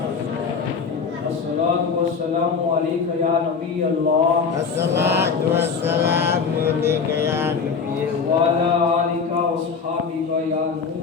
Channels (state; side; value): quieter; right; 5.5 dB